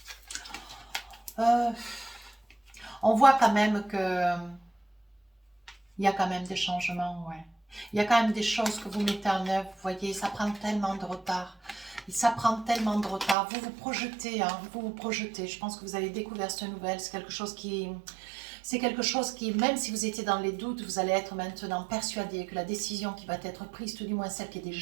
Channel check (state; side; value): drops out; left; at 13.4 s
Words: On voit quand même que il y a quand même des changements, ouais. Il y a quand même des choses que vous mettez en œuvre, vous voyez, ça prend tellement de retard. Ça prend tellement de retard. Vous vous projetez, hein, vous vous projetez. Je pense que vous avez découvert cette nouvelle. C'est quelque chose qui... C'est quelque chose qui, même si vous étiez dans les doutes, vous allez être maintenant persuadé que la décision qui va être prise, tout du moins celle qui est